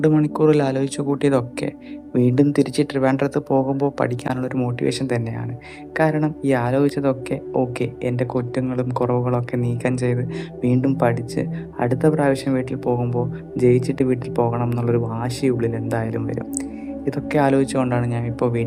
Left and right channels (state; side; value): identical; both; correlation 1.00